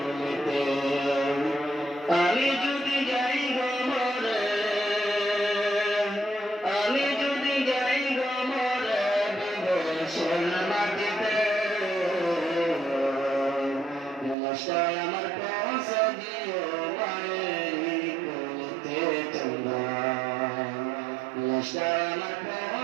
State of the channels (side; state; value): left; drops out; at 14.4 s